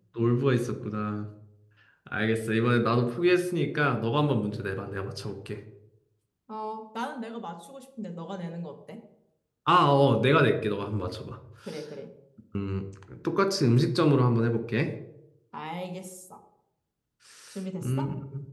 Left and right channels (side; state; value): both; identical; correlation 1.00